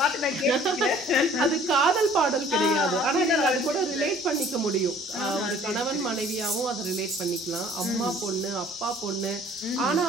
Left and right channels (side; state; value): both; normal; correlation 0.53